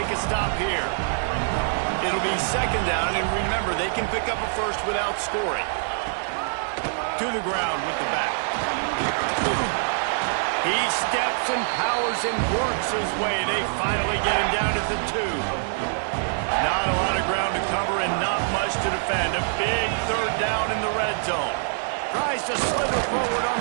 a stop here. It'll be 2nd down, and remember, they can pick up a first without scoring. To the ground with the back. He steps and powers and works his way. They finally get him down at the 2. Not a lot of ground to cover and not much to defend. A big 3rd down in the red zone. Tries to slither forward on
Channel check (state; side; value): silent; left; digital silence